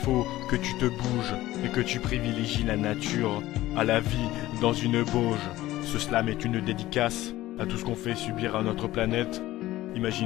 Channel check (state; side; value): quieter; right; 16.2 dB